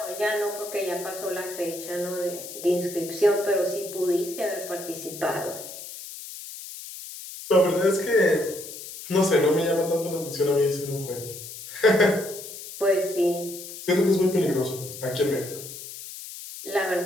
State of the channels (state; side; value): noise; left; hiss, 12 dB below the sound